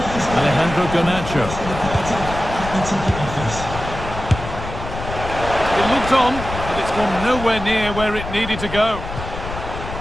Alejandro Garnacho. It looked on, but it's gone nowhere near where it needed to go.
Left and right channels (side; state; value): left; noise; rumble, 8 dB below the sound